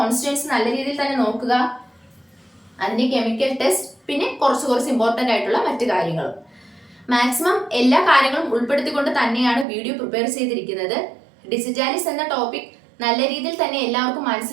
നല്ല രീതിയിൽ തന്നെ നോക്കുക, അതിന്റെ കെമിക്കൽ ടെസ്റ്റ്, പിന്നെ കുറച്ച് ഇമ്പോർട്ടന്റ് ആയിട്ടുള്ള മറ്റു കാര്യങ്ങളും. മാക്സിമം എല്ലാ കാര്യങ്ങളും ഉൾപ്പെടുത്തിക്കൊണ്ട് തന്നെയാണ് വീഡിയോ പ്രിപ്പയർ ചെയ്തിരിക്കുന്നത്. ഡിജിറ്റാലിസ് എന്ന ടോപ്പിക് നല്ല രീതിയിൽ തന്നെ എല്ലാവർക്കും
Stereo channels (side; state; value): left; drops out; at 9.7 s